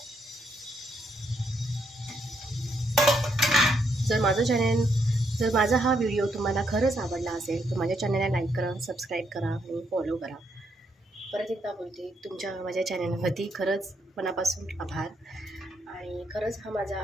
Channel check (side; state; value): both; normal; correlation 0.76